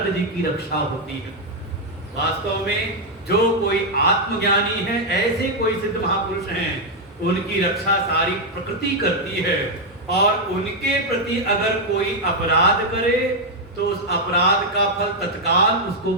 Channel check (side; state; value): both; normal; correlation 0.00